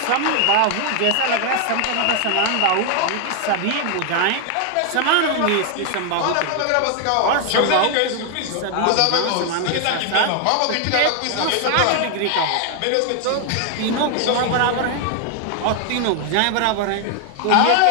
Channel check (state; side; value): different; both; correlation 0.00